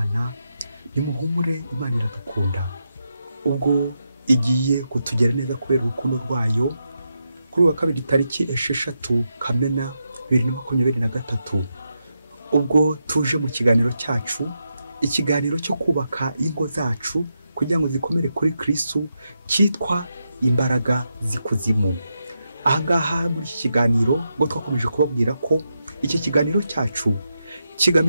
nimuhumure, Imana iradukunda. Ubwo igiye kutugera neza kubera urukundo rwayo, kuri uwa kabiri tariki 6 Kamena 2023, ubwo tuje mu kiganiro cyacu, ikiganiro cyo kubaka ingo zacu kugira ngo zikomere kuri Kristo, cyitwa Imbaraga z'ikuzimu. Ahangaha muri iki kiganiro ngo twakomeje kubabwira ko iki kiganiro cyacu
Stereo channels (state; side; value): inverted; both; correlation -0.85